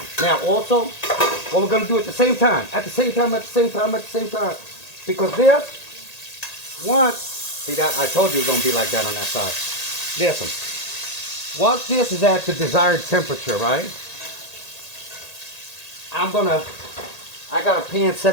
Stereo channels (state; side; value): late; right; 1.8 ms